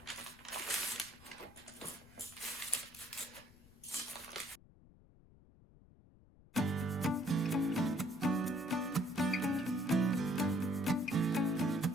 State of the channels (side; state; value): left; noise; rumble, 24 dB below the sound